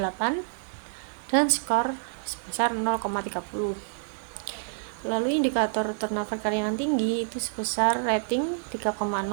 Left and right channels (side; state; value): left; silent; digital silence